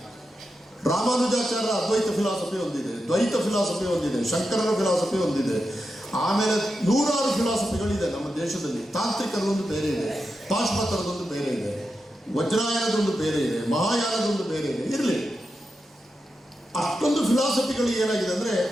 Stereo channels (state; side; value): normal; both; correlation 0.89